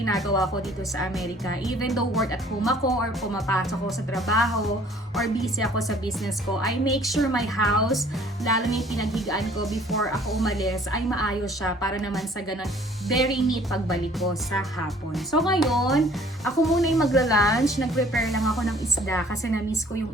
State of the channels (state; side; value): normal; both; correlation 0.55